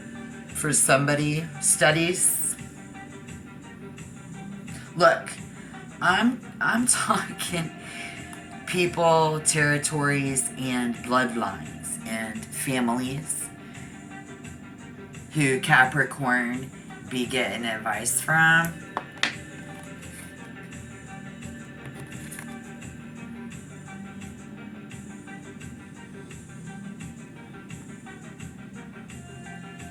for somebody, studies. Look, I'm talking people, territories, and bloodlines and families who Capricorn be getting advice from.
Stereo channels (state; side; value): identical; both; correlation 1.00